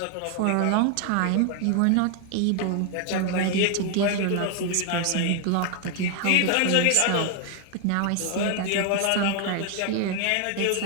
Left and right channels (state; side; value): different; both; correlation 0.00